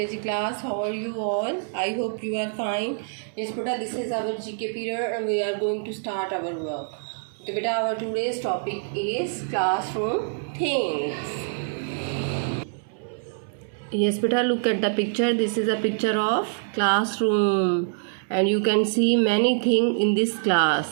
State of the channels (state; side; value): silent; left; digital silence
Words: class. How are you all? I hope you are fine. Yes, beta, this is our GK period and we are going to start our work. So, beta, our today's topic is classroom things. Yes, beta, look at the picture. This is a picture of classroom and you can see many things in this